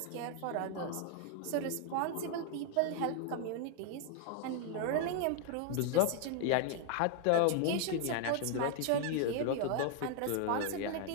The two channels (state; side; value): different; both; correlation 0.00